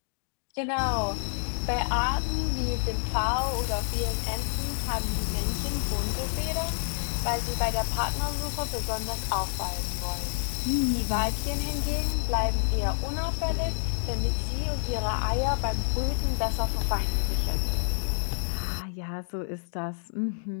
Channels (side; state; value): right; silent; digital silence